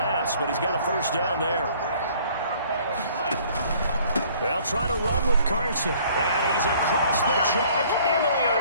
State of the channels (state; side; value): inverted; both; correlation -0.57